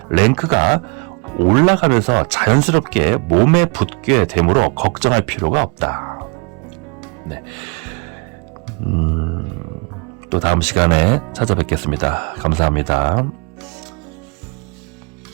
랭크가 올라가면서 자연스럽게 몸에 붙게 되므로 걱정할 필요가 없다. 네. 또 다음 시간에 찾아뵙겠습니다. 감사합니다.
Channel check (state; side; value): quieter; left; 32.1 dB